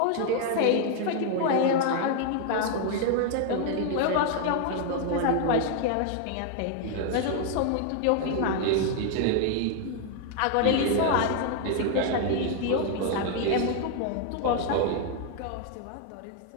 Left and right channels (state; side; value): different; both; correlation 0.00